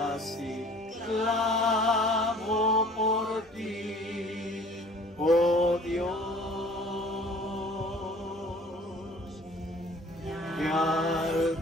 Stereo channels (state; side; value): normal; both; correlation 0.51